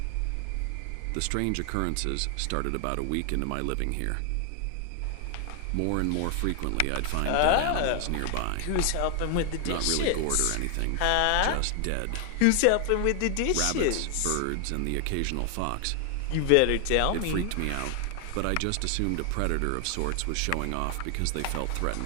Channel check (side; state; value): both; different; correlation 0.00